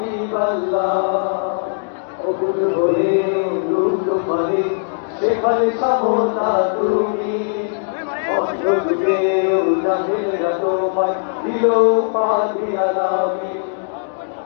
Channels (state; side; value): silent; right; digital silence